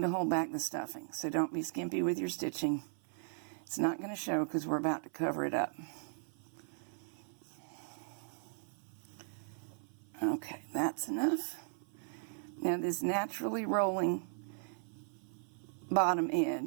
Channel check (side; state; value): left; silent; 53 dB below the other